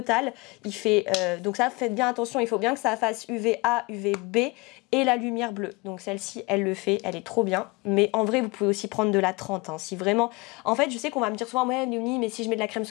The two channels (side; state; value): right; quieter; 25.8 dB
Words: Il fait, donc ça, faites bien attention, il faut bien que ça fasse UVA, UVB et la lumière bleue. Donc celle-ci, elle le fait, elle est trop bien. Mais en vrai, vous pouvez aussi prendre de la 30. Hein, si vraiment... En fait, je sais qu'on va me dire souvent, ouais, Léonie, mais si je mets de la crème